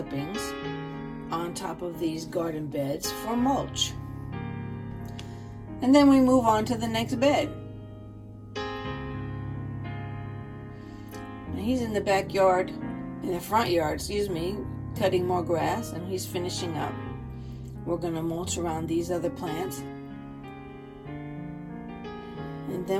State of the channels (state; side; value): identical; both; correlation 1.00